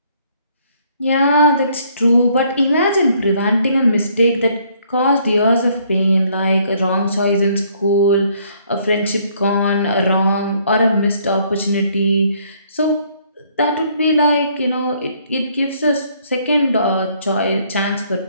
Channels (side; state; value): both; inverted; correlation -0.65